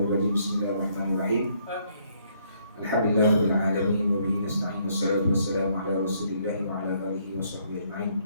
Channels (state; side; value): inverted; both; correlation -0.69